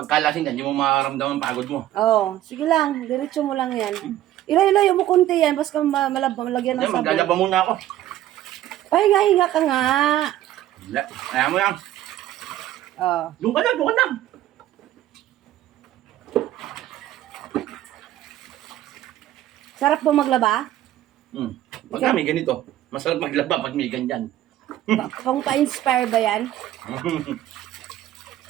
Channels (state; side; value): quieter; left; 13.3 dB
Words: kalasing ka, hindi mo makaramdaman pagod mo. Oh, sige lang, diretso mo lang yan. Ilayo mo konti yan, basta malagyan ng Hindi, sabon. maglalaba muna ako. Pahinga-hinga ka nga. Ayaw mo yan. Oh. Doon ka lang. Sarap po maglaba? Pag may ganito, masarap maglaba pag may ganyan. Pang pa-inspire ba yan?